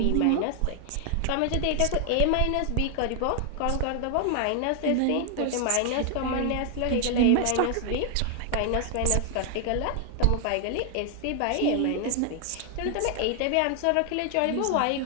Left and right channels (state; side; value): different; both; correlation 0.00